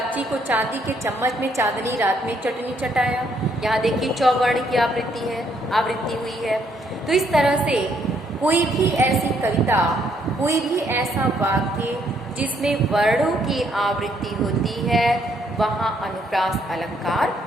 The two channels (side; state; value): both; normal; correlation 0.70